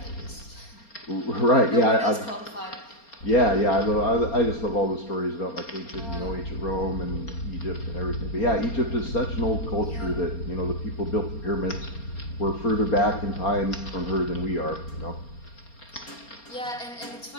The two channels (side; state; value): right; late; 4.3 ms